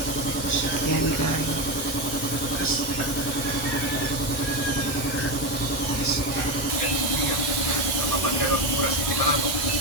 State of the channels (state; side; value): normal; both; correlation 0.14